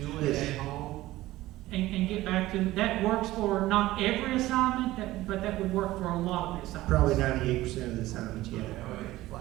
it Yes. at home? And get back to, that works for not every assignment, but that would work for a lot of the assignments. Probably 98% of the assignments, yeah. I think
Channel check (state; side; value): quieter; left; 16.9 dB